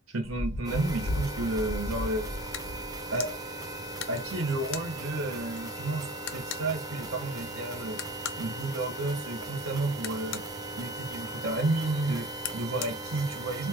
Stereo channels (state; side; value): normal; both; correlation 0.42